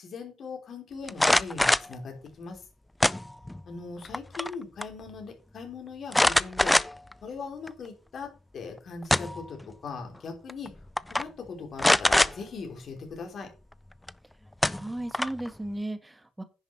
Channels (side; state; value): both; normal; correlation 0.98